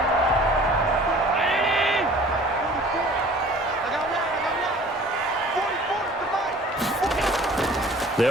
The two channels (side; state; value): both; normal; correlation 0.48